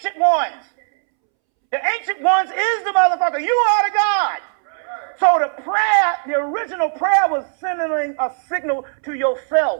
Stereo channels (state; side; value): silent; left; 67 dB below the other